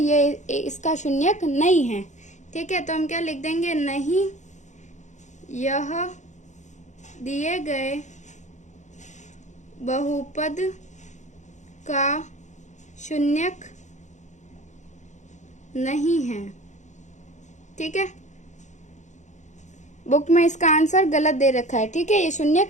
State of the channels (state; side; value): late; right; 0.35 ms